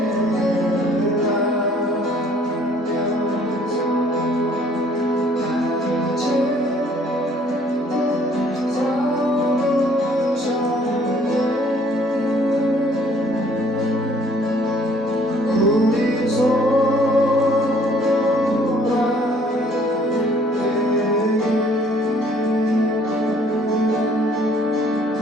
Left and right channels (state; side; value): normal; both; correlation 0.59